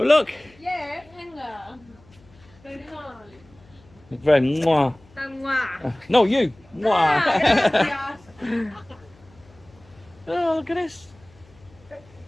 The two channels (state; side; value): noise; left; hum, 27 dB below the sound